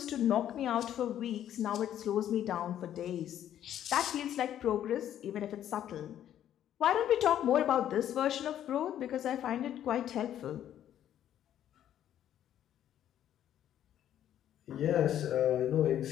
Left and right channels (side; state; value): right; quieter; 11.0 dB